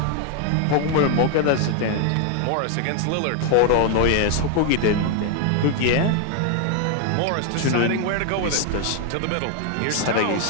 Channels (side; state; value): both; different; correlation 0.00